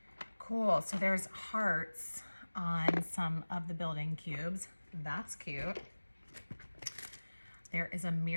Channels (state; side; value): inverted; both; correlation -1.00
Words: Cool. So there's hearts on some of the building cubes. That's cute. There is a